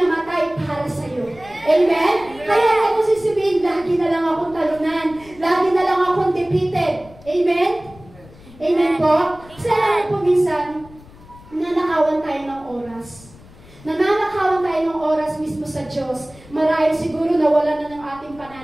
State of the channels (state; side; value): noise; left; rumble, 22 dB below the sound